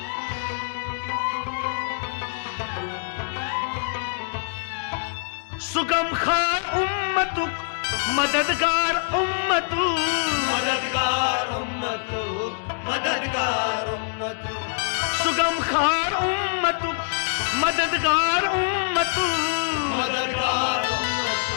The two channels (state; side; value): silent; right; digital silence